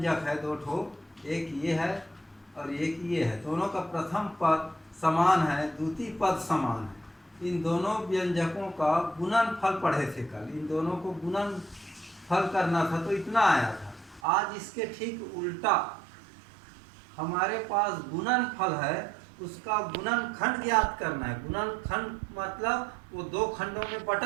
है, दो ठो, एक ये है और एक ये है, दोनों का प्रथम पद समान है, द्वितीय पद समान है। इन दोनों व्यंजकों का गुणन फल पढ़े थे कल, इन दोनों को गुणन फल करना था तो इतना आया था। आज इसके ठीक उल्टा हमारे पास गुणन फल है, उसका गुणन खंड ज्ञात करना है। गुणन खंड मतलब वो दो खंडों में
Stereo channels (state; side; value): drops out; left; at 14.2 s